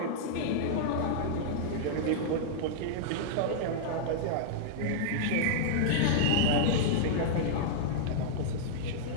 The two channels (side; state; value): both; different; correlation -0.02